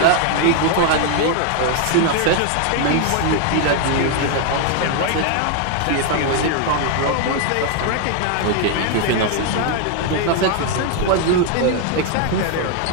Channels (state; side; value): different; both; correlation 0.00